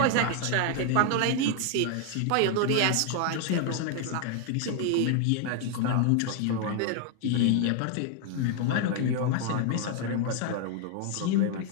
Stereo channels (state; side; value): different; both; correlation 0.00